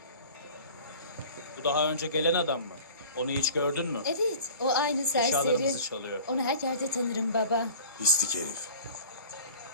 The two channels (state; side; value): inverted; both; correlation -0.43